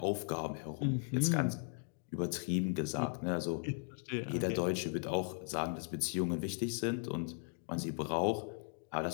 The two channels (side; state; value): right; silent; 53 dB below the other